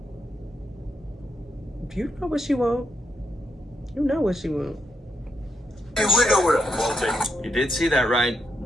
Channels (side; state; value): both; normal; correlation 0.79